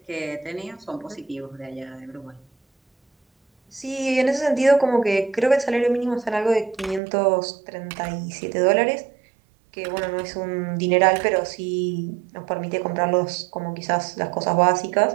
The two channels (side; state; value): left; drops out; at 7.0 s